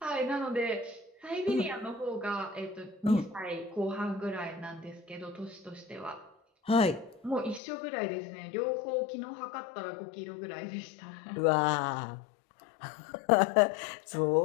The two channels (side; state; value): right; drops out; at 7.6 s